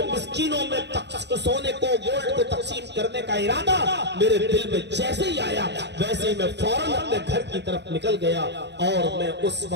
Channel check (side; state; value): left; late; 0.50 ms